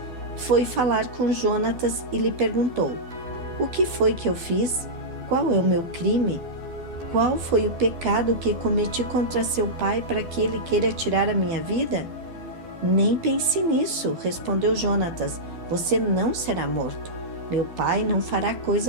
foi falar com Jonatas e lhe perguntou: o que foi que eu fiz? Qual é o meu crime? Qual foi o pecado que cometi contra seu pai para que ele queira tirar a minha vida? Nem pense nisso, respondeu Jonatas. Você não será morto. Meu pai não fará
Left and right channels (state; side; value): late; left; 12 ms